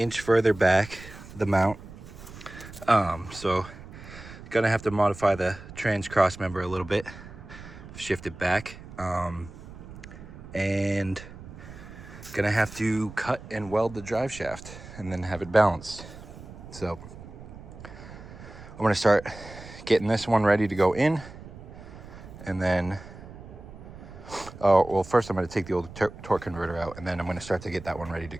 further back, the mount. So gonna have to modify the trans cross member a little bit, shift it back, and gonna have to cut and weld the drive shaft and then have it balanced. So I'm gonna start getting this one ready to go in, and then well, first I'm gonna take the old torque converter out, and then I'm gonna start to get that one ready to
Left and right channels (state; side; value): noise; right; rumble, 15 dB below the sound